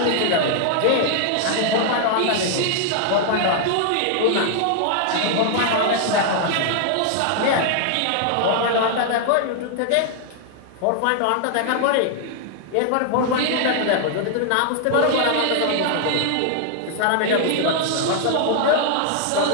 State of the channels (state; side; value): different; both; correlation 0.00